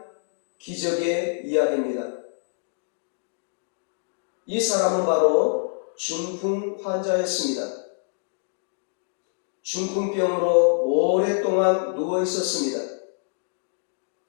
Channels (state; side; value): silent; right; digital silence